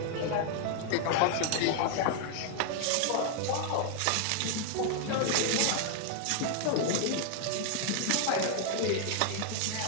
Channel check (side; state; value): both; different; correlation 0.00